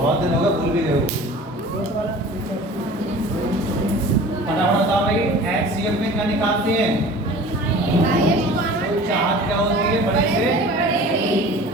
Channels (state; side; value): normal; both; correlation 0.42